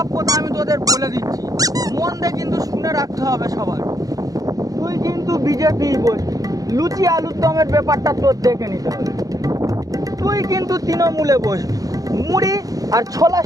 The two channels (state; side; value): late; left; 0.17 ms